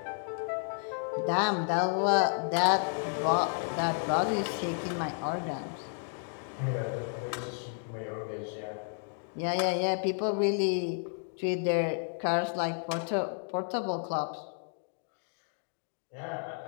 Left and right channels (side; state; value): right; silent; 56 dB below the other